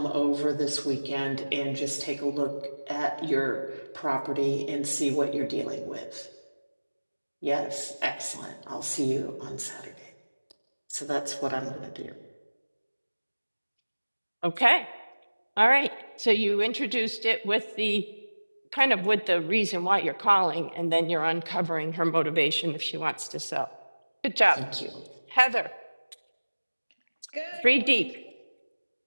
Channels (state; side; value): inverted; both; correlation -1.00